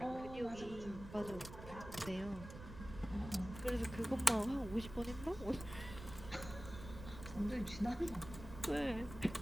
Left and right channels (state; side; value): noise; right; rumble, 12 dB below the sound